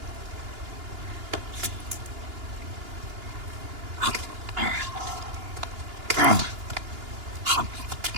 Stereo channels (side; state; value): left; late; 2.9 ms